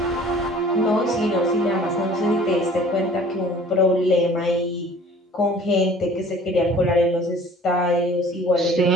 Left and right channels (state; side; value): normal; both; correlation 0.49